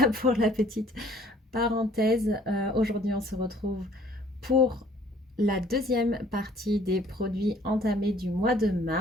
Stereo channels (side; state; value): both; normal; correlation 0.57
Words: pour la petite parenthèse. Aujourd'hui, on se retrouve pour la deuxième partie des produits entamés du mois de